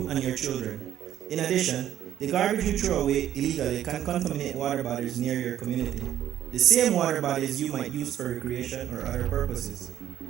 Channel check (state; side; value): quieter; left; 11.3 dB